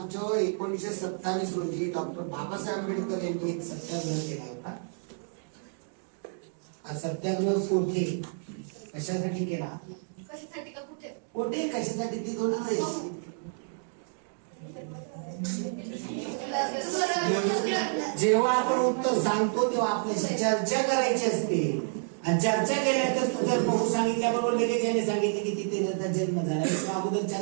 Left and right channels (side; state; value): left; silent; digital silence